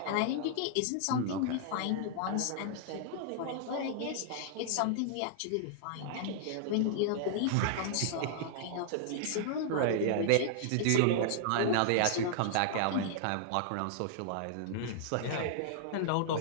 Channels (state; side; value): different; both; correlation -0.01